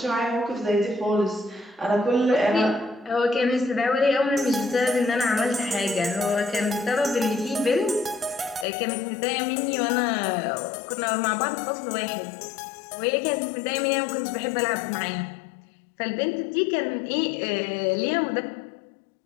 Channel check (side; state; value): right; drops out; at 8.7 s